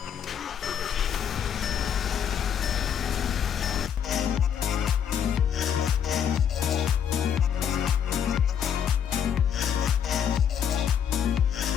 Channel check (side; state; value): right; quieter; 8.3 dB